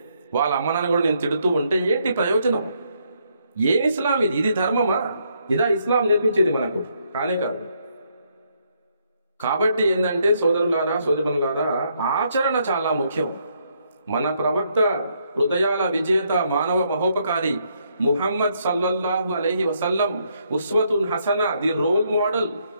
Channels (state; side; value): inverted; both; correlation -0.74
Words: వాళ్ళ అమ్మ నాన్న కూడా నేను తిడుతూ ఉంటే ఏంటి ప్రయోజనం? ఏం ఇస్లాం ఇది? ఇది ధర్మమా? ఇదా ఇస్లాం నేర్పించేది మనకు? కానే కాదు. కాబట్టి ఏంటంటే సోదరులారా, సోదరులారా, ఆచరణ చాలా ముఖ్యం. మన ప్రవక్త, హృదయాల విజేత, మానవ మహోపకారి ముహమ్మద్ సల్లల్లాహు అలైహి వసల్లం ఉస్వతున్ హసన, ది రోల్ మోడల్,